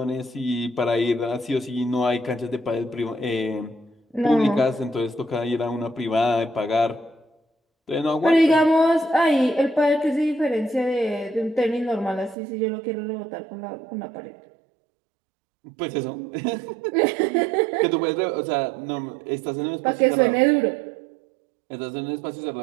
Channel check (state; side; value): drops out; left; at 12.4 s